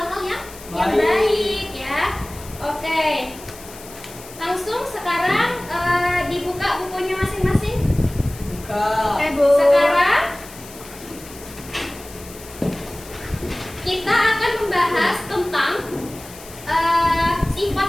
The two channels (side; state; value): left; noise; hiss, 17 dB below the sound